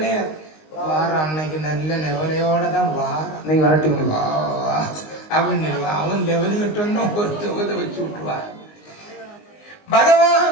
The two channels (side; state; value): right; late; 19 ms